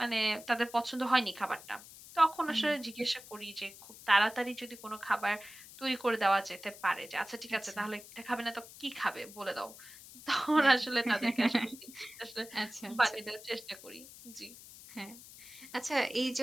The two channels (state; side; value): noise; left; hiss, 17 dB below the sound